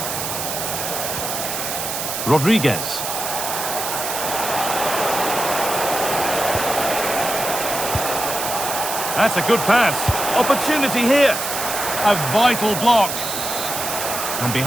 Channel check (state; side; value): noise; right; hiss, 4 dB below the sound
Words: Rodriguez. That's a good pass. Opportunity here. A vital block. And